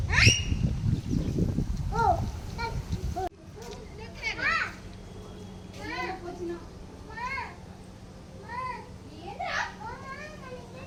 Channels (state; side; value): identical; both; correlation 1.00